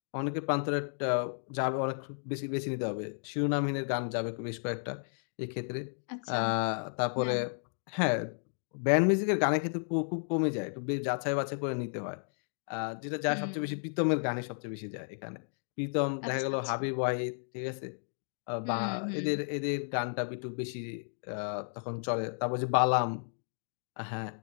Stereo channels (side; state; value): right; silent; digital silence